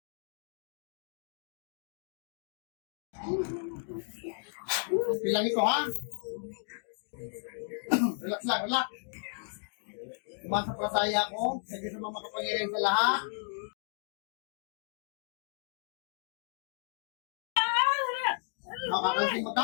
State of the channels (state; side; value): silent; right; digital silence